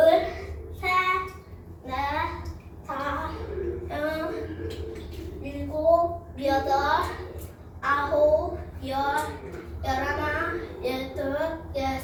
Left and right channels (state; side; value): identical; both; correlation 1.00